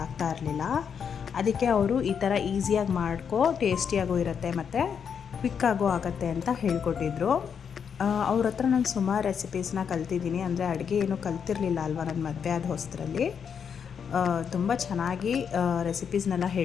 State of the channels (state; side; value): quieter; right; 7.2 dB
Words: ಇರಲಿಲ್ಲ. ಅದಕ್ಕೆ ಅವರು ಈ ಥರ ಈಸಿಯಾಗಿ ಮಾಡ್ಕೊ, ಟೇಸ್ಟಿಯಾಗೂ ಇರುತ್ತೆ ಮತ್ತು ಕ್ವಿಕ್ಕಾಗೂ ಆಗುತ್ತೆ ಅಂತ ಹೇಳ್ಕೊಟ್ಟಿದ್ರು. ಅವ್ರ ಹತ್ರ ನಾನು ಸುಮಾರು ರೆಸಿಪೀಸ್ನ ಕಲ್ತಿದ್ದೀನಿ. ಅಂದರೆ ಅಡುಗೆ ಏನೂ ಕಲ್ತಿರಲಿಲ್ಲ ಅಲ್ವಾ ನಾನು ಮದುವೆ ಆದ ಹೊಸದ್ರಲ್ಲಿ. ತುಂಬ ಚೆನ್ನಾಗಿ ರೆಸಿಪೀಸ್ನೆಲ್ಲ